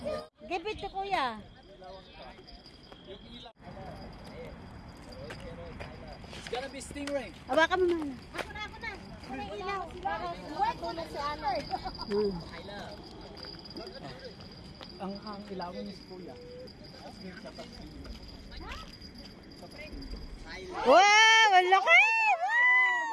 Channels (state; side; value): identical; both; correlation 1.00